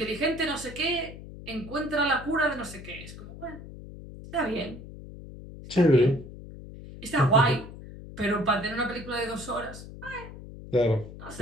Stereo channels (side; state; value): left; noise; hum, 14 dB below the sound